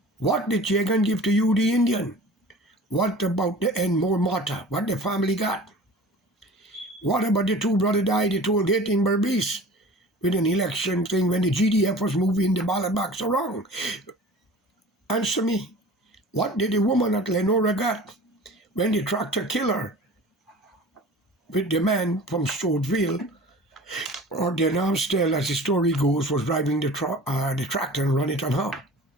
What did Jagan give to you, the Indian? What about the Enmore Mata? What the family got? What about the two brothers died at toll gate in Berbice? with an election thing when the GDF was moving the ballot box around? Answer me. What did the woman at Lenora get when the tractor killed her with the man from Stouffville, or the Amstel, as the story goes, was driving the tractor and run it on her?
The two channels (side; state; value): both; normal; correlation 0.41